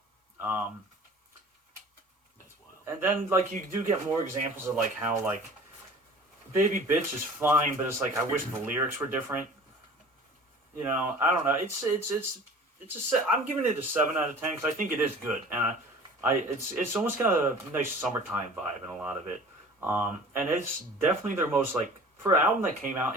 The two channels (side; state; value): both; normal; correlation 0.45